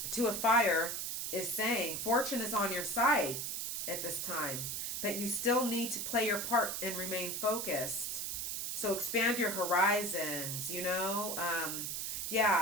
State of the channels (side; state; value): right; noise; hiss, 2 dB below the sound